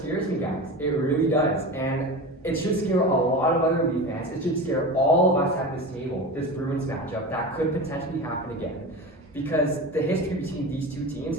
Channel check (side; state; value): both; normal; correlation 0.28